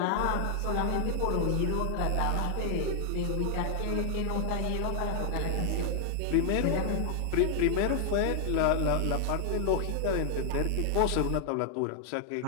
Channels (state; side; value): different; both; correlation 0.00